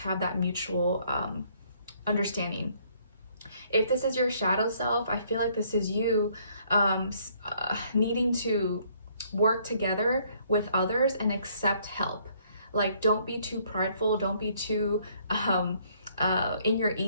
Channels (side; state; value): both; inverted; correlation -0.65